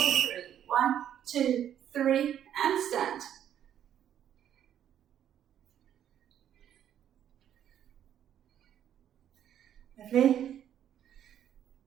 3. 1, 2, 3, and stand. Lovely.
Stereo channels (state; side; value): quieter; left; 10.2 dB